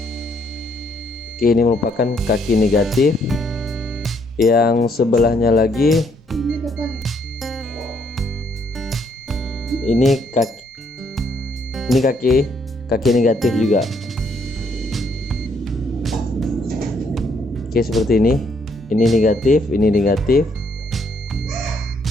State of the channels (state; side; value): normal; both; correlation 0.70